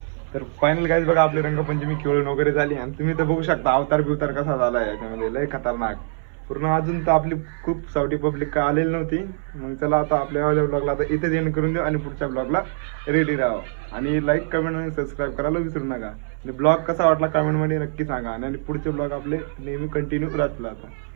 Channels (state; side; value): silent; left; 63 dB below the other